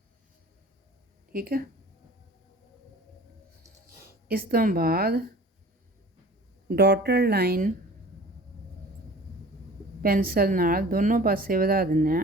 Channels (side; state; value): both; normal; correlation 0.45